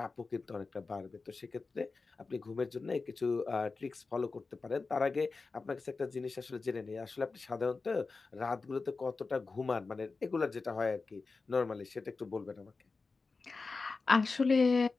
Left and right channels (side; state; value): right; quieter; 4.1 dB